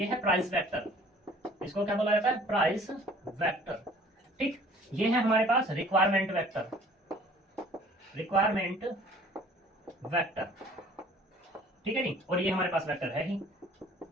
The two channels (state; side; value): normal; both; correlation 0.53